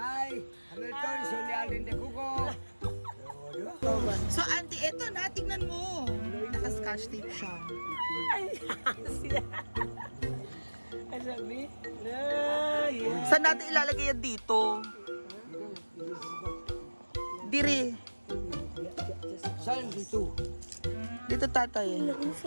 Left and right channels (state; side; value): inverted; both; correlation -1.00